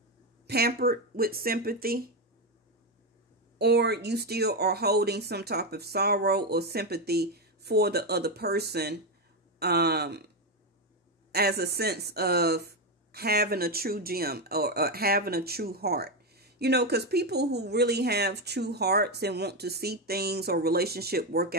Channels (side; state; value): both; normal; correlation 0.09